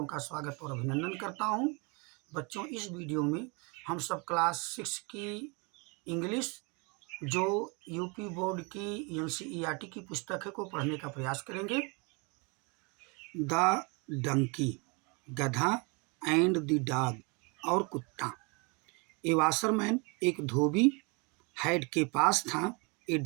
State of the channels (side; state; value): left; quieter; 31.1 dB